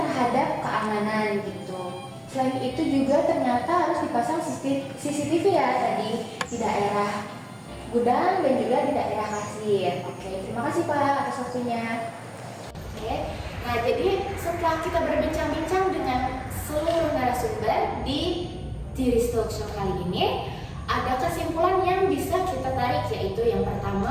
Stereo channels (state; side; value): identical; both; correlation 1.00